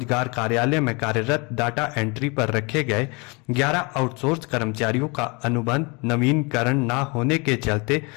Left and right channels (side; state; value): right; quieter; 29.2 dB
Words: कार्यालय में कार्यरत डाटा एंट्री पर रखे गए 11 आउटसोर्स कर्मचारियों का अनुबंध नवीनीकरण न होने के चलते